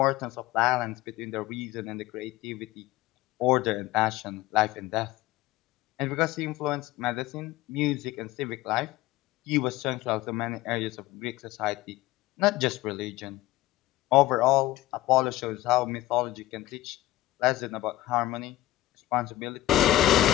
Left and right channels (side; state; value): right; quieter; 16.2 dB